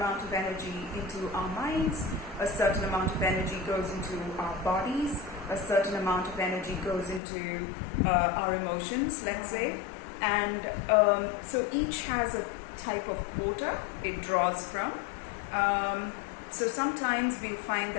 of energy into our minds, a certain amount of energy goes into our bodies, a certain amount of energy goes into our emotions, let's say, and so each has a type of quota it draws from. So sometimes we find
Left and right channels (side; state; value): right; drops out; at 7.2 s